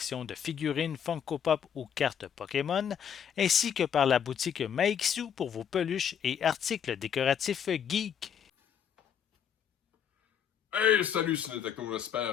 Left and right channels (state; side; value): quieter; right; 8.3 dB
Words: de figurines Funko Pop ou cartes Pokémon, ainsi que par la boutique Maixu pour vos peluches et articles décoratifs geek. Hey, salut Ciné-Techno,